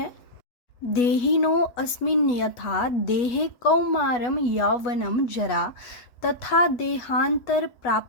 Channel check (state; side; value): late; right; 8.2 ms